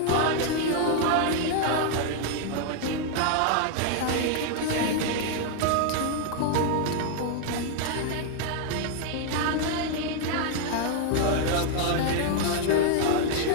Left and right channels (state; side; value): different; both; correlation 0.00